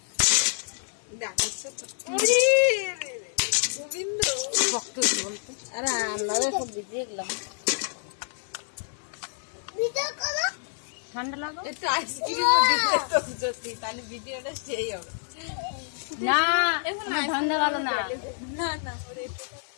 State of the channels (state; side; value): silent; right; digital silence